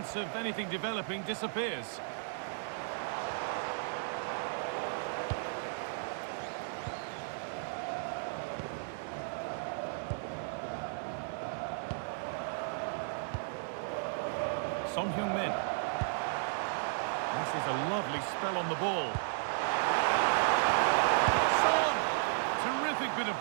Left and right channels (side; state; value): left; silent; 55 dB below the other